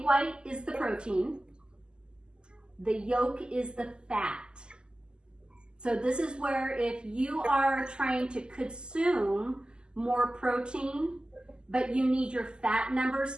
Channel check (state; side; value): late; left; 0.048 ms